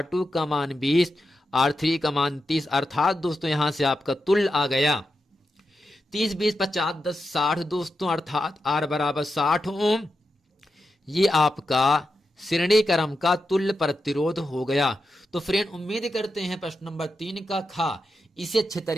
का मान 20, R3 का मान 30। अर्थात दोस्तों यहाँ से आपका तुल्य आ गया 30, 20, 50, 10, 60 दोस्तों, अर्थात R बराबर 60 ओम। ये आपका श्रेणी क्रम का तुल्य प्रतिरोध हो गया। तो फ्रेंड उम्मीद करते हैं प्रश्न नंबर 3 का खा इसे अच्छे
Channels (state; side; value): normal; both; correlation 0.88